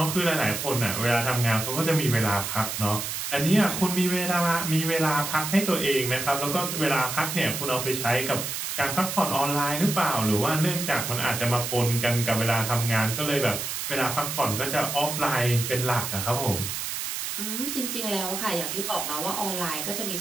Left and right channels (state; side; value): noise; right; hiss, 4 dB below the sound